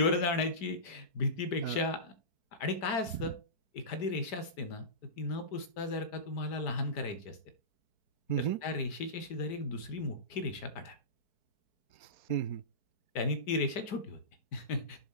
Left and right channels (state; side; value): late; right; 5.1 ms